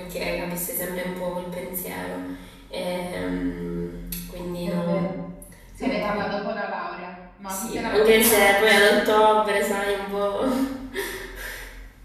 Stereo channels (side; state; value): both; identical; correlation 1.00